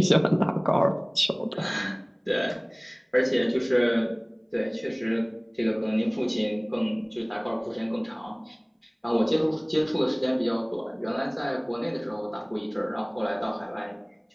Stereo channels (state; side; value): identical; both; correlation 1.00